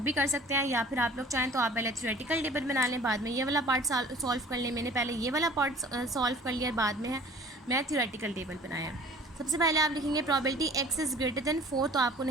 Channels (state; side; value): normal; both; correlation 0.48